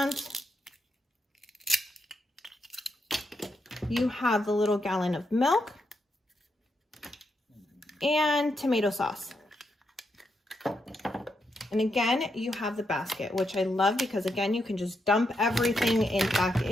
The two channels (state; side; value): normal; both; correlation 0.82